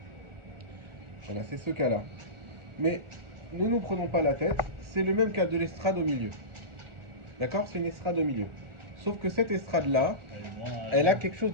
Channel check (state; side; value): late; left; 1.4 ms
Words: Voilà, c'est ce cas-là. Mais ne nous prenons pas la tête, c'est le même cas de l'estrade au milieu. D'accord? C'est une estrade au milieu. Sauf que cette estrade-là, elle a quelque chose